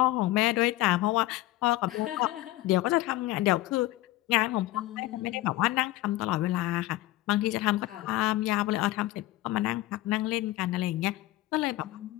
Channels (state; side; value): quieter; right; 17.1 dB